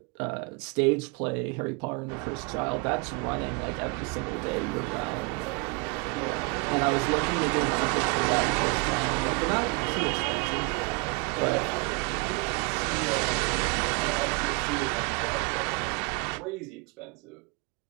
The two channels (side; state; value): left; quieter; 30.5 dB